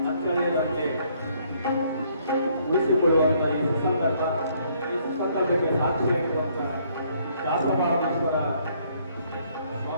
ಅಚ್ಚಳಿಯದಂತೆ ಉಳಿಸಿಕೊಳ್ಳುವಂಥ ಈ ಸುಸಂದರ್ಭಕ್ಕೆ ಸಾಕ್ಷಿಯಾಗಿರುವಂಥ ದಾಸಮಹಾರಾಮೇಶ್ವರ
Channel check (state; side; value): inverted; both; correlation -0.67